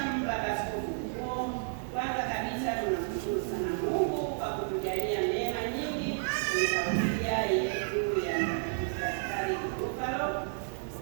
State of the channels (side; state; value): left; silent; digital silence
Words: Askofu Mkuu, kwanza kabisa tunamshukuru sana Mungu kwa kutujalia neema nyingi kwenye parokia yetu ya Mtakatifu Gaspari Bufalo.